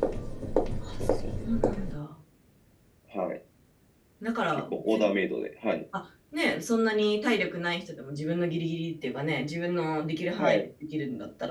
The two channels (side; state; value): both; identical; correlation 1.00